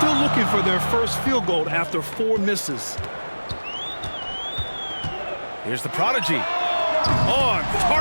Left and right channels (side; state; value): both; inverted; correlation -1.00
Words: looking for their first field goal after 4 misses. Here's the prodigy. On